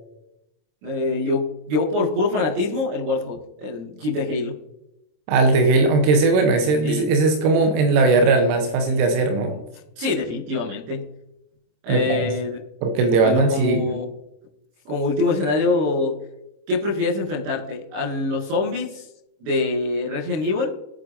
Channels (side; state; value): left; late; 26 ms